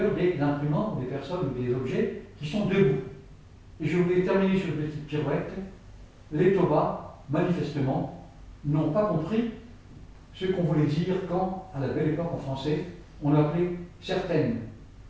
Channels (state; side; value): identical; both; correlation 1.00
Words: des imprimants, des personnes ou des objets qui sont debout. Et je voulais terminer sur une petite pirouette. Les Toba, manifestement, n'ont pas compris ce qu'on voulait dire quand, à la belle époque en français, on appelait certaines